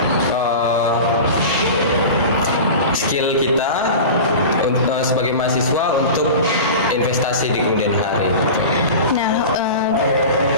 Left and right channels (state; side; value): inverted; both; correlation -0.32